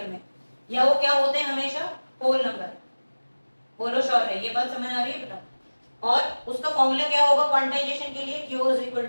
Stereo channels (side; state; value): both; inverted; correlation -1.00